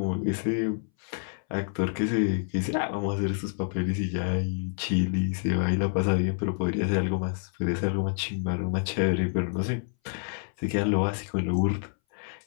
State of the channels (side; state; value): right; silent; 59 dB below the other